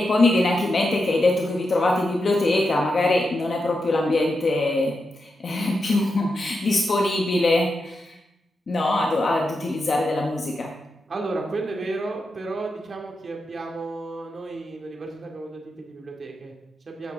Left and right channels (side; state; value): both; normal; correlation 0.87